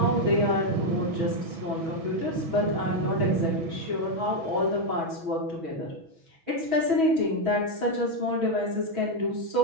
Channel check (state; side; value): late; left; 6.1 ms